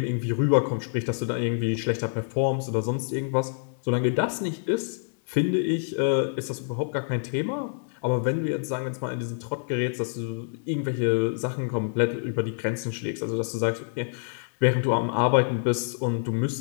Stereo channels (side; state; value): right; silent; digital silence